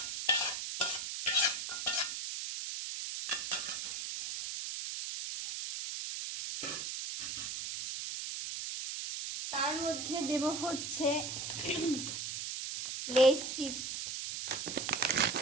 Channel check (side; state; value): right; noise; hiss, 5 dB below the sound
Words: তার মধ্যে দেব হচ্ছে লেস চিপস,